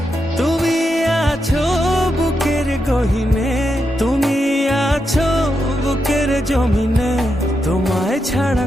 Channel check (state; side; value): normal; both; correlation 0.85